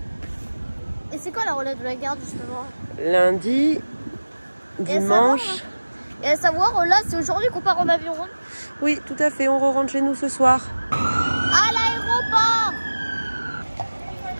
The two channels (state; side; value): inverted; both; correlation -1.00